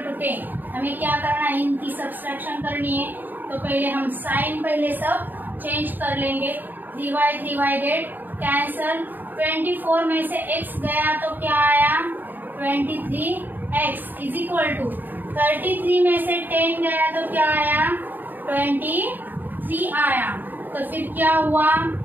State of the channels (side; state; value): left; late; 0.089 ms